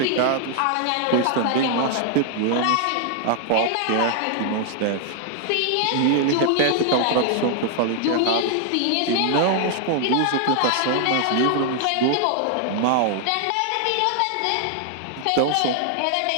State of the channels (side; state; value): both; different; correlation 0.00